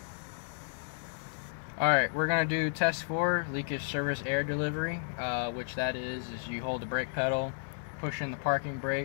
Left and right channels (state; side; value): silent; right; digital silence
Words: Alright, we're going to do test 4, leakage service air delivery, which that is you hold the brake pedal, push in the parking